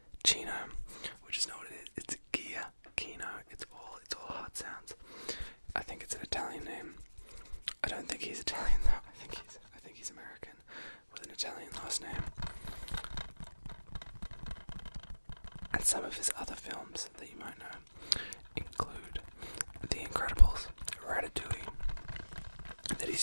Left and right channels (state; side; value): inverted; both; correlation -1.00